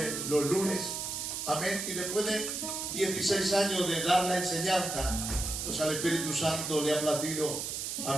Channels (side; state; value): right; noise; hiss, 4 dB below the sound